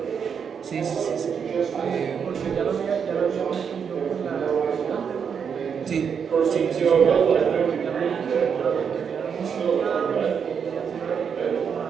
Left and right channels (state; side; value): quieter; left; 6.9 dB